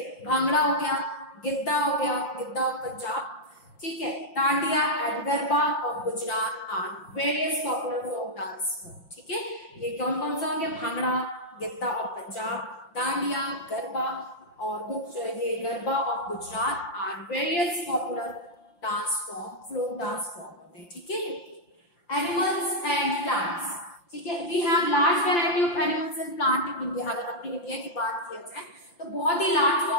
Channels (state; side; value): late; right; 5.8 ms